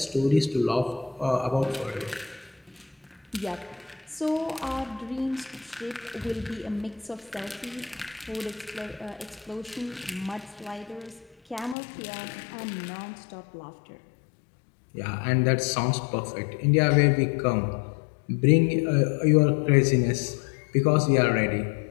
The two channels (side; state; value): right; drops out; at 11.8 s